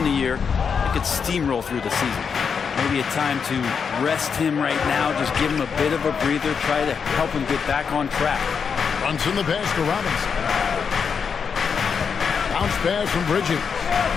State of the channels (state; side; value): quieter; right; 6.3 dB